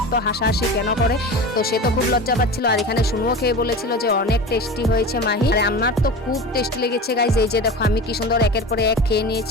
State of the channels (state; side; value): normal; both; correlation 0.31